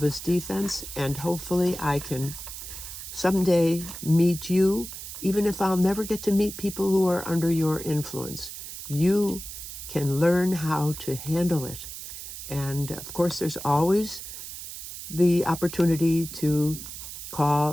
defense, and hopefully I can someday meet you, even if I'll never get to meet people who are under your influence. You can learn how to handle it. And of course, there's always the opportunity to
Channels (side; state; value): right; noise; hiss, 10 dB below the sound